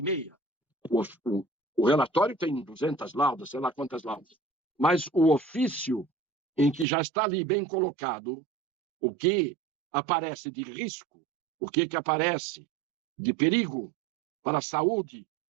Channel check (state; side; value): drops out; left; at 6.9 s